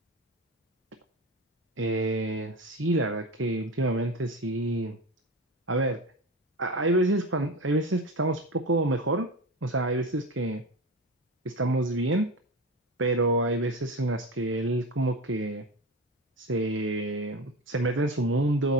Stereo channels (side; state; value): both; normal; correlation 0.25